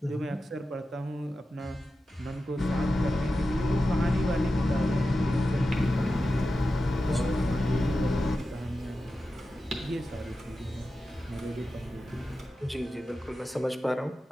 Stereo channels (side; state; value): both; normal; correlation 0.92